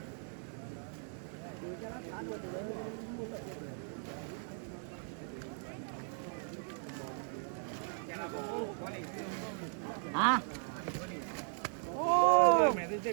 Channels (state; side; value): silent; left; 53 dB below the other